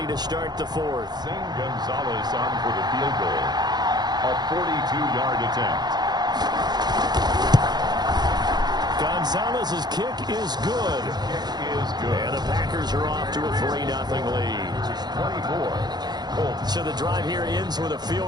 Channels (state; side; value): late; left; 0.20 ms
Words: to start the 4th. Zane Gonzalez on for the field goal. A 42-yard attempt. Gonzalez's kick is good. And the Packers are off to a 3-0 lead. 24. So the drive here ends with a